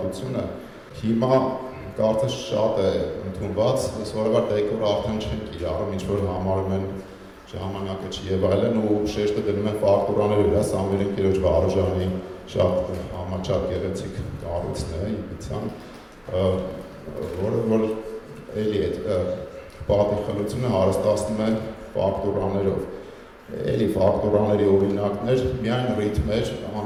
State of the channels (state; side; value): identical; both; correlation 1.00